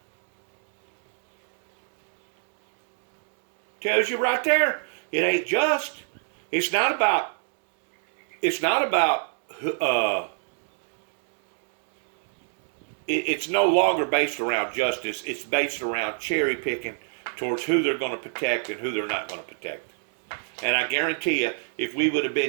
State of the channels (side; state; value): left; silent; digital silence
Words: Tells you right there, it ain't just. It's not about it's no longer based around justice. It's based around cherry picking towards who they're going to protect and who they're not going to protect. And I guarantee you, if we would have